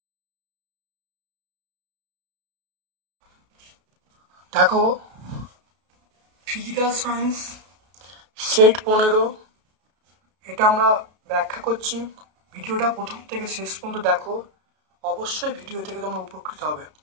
physical science set 15 এটা আমরা ব্যাখ্যা করছি। ভিডিওটা প্রথম থেকে শেষ পর্যন্ত দেখো, অবশ্যই ভিডিও থেকে তোমরা উপকৃত হবে।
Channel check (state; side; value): late; left; 33 ms